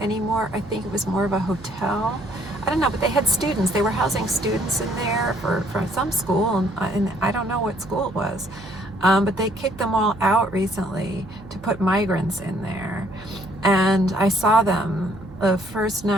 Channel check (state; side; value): noise; right; hum, 19 dB below the sound